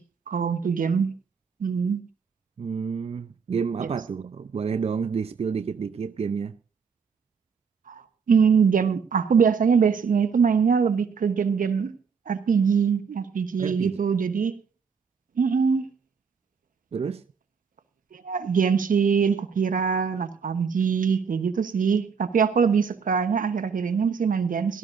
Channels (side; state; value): left; quieter; 6.0 dB